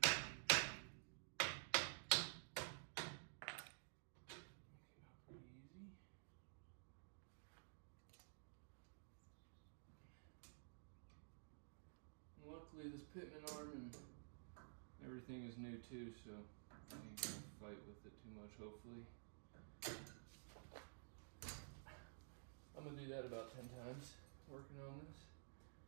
Pretty easy. And luckily this pitman arm and everything is new too, so I ain't gonna fight with it too much, hopefully. I'm gonna do that about 10 times, working on this.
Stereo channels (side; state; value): left; silent; digital silence